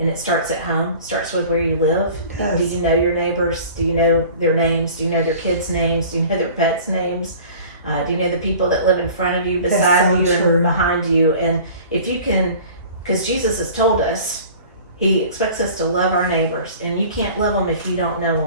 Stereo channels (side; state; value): both; inverted; correlation -0.44